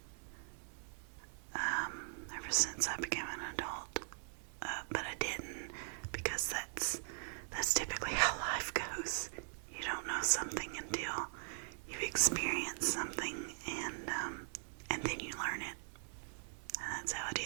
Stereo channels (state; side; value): silent; left; digital silence